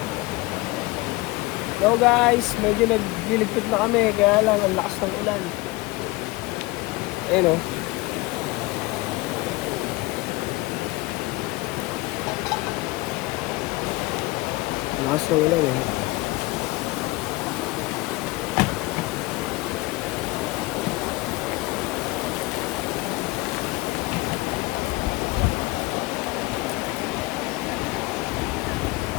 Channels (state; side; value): quieter; right; 21.7 dB